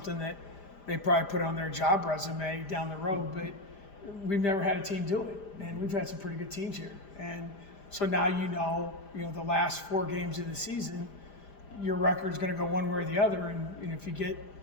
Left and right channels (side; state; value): right; late; 5.1 ms